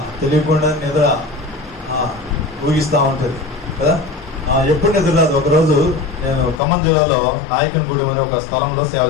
తెలియకుండా నిద్ర ఊగిస్తూ ఉంటుంది కదా. ఎప్పుడు నిద్ర రాదు. ఒకరోజు నేను ఖమ్మం జిల్లాలో నాయకనగూడెం అనే ఒక స్థలంలో సేవ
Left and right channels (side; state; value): right; drops out; at 6.6 s